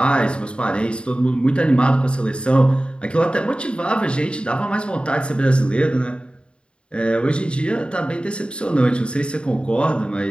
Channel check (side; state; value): right; late; 0.054 ms